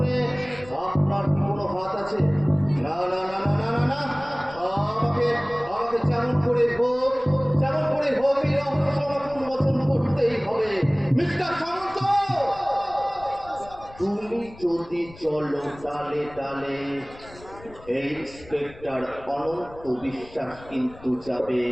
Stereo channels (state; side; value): noise; left; rumble, 20 dB below the sound